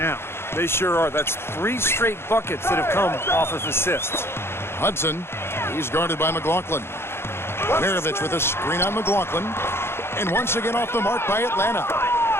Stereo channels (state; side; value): late; right; 0.12 ms